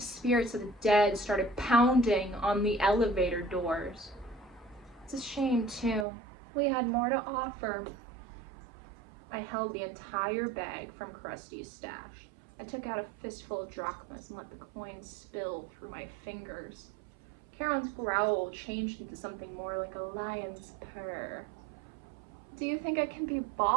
spirits of the dead started pounding on the elevator doors. It's a shame, too. We had more to offer. I held the entire bag from Crusty's stash. I took out a fistful of drachmas and let the coins spill through my fingers. Charon's growl changed into something more like a lion's purr. Do you think I can be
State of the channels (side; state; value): left; drops out; at 6.1 s